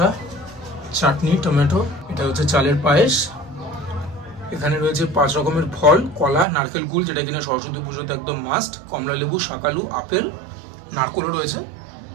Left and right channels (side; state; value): left; drops out; at 6.5 s